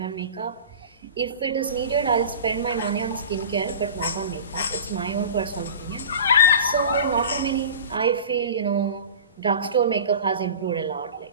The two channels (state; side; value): inverted; both; correlation -0.36